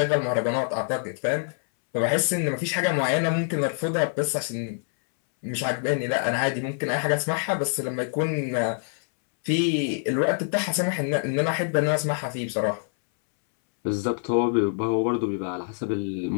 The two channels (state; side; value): silent; right; 61 dB below the other